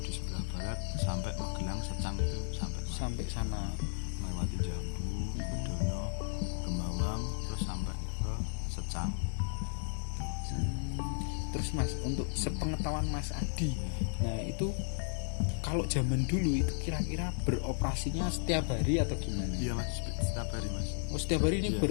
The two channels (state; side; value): silent; right; 55 dB below the other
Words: di sebelah barat sampai Magelang Secang itu sampai sana melewati Jambu, Kudono, Kembawang, terus sampai ke Secang. Terus Mas untuk sepengetahuan Mas Adi, nah itu kalau zaman dulu itu kira-kira beroperasinya setiap hari atau gimana? Iya Mas, setiap hari Mas. Oh setiap hari ini